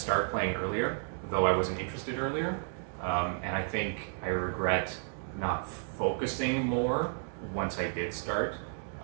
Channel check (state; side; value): silent; left; 56 dB below the other